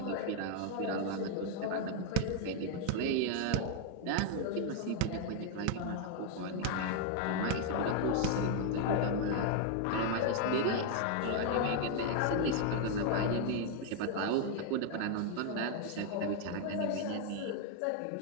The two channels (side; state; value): both; different; correlation 0.00